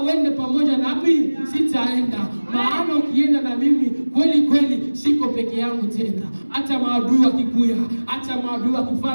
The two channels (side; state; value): both; inverted; correlation -1.00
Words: uende pamoja nami sitaenda, maana ukienda na mimi kweli kweli siko peke yangu tena. Hata maadui wakikuya, hata maadui